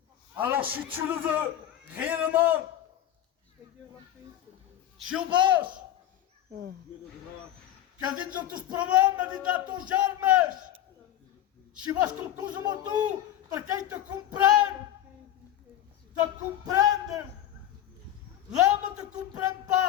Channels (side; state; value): right; quieter; 12.0 dB